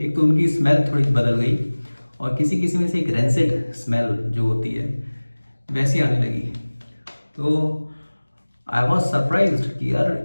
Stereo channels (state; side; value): inverted; both; correlation -1.00